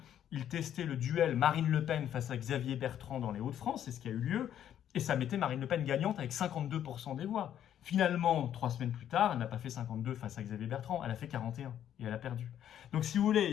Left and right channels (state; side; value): quieter; right; 10.4 dB